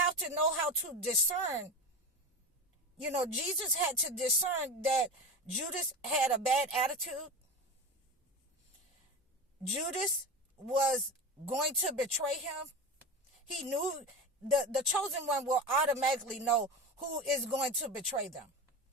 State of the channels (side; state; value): both; normal; correlation 0.25